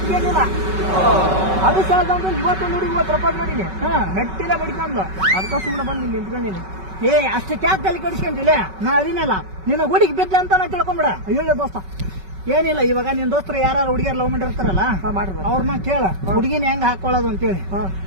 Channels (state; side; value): late; left; 5.3 ms